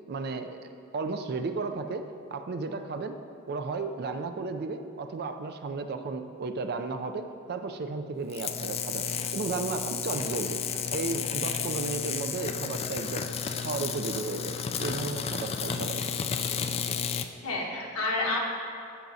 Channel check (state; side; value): normal; both; correlation 0.15